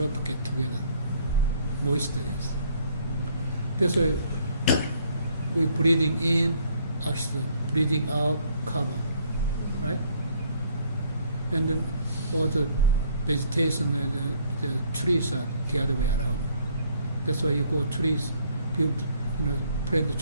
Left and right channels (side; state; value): both; inverted; correlation -0.63